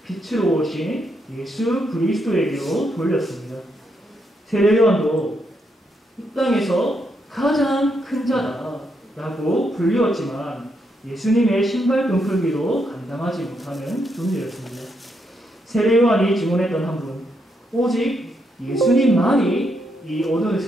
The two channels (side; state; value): both; normal; correlation 0.79